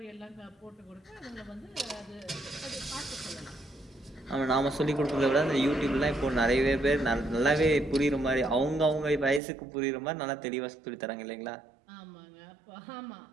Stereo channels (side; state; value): left; drops out; at 9.4 s